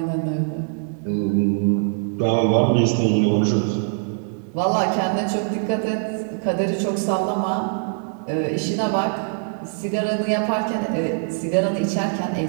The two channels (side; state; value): left; silent; digital silence